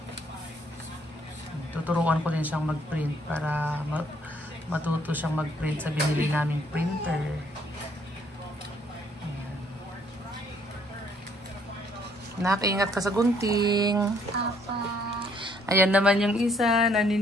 Tuturuan ko din siyang mag-print para matuto siyang mag-print sa binili naming printer. Nakaingat ka sa gunting. Papa. Ayan naman yung isa,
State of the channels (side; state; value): both; normal; correlation 0.66